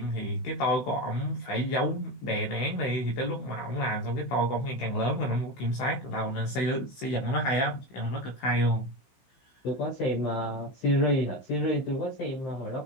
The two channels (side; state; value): right; late; 16 ms